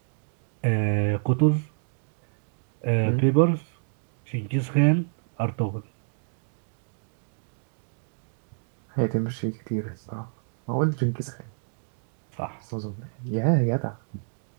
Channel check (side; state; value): left; silent; digital silence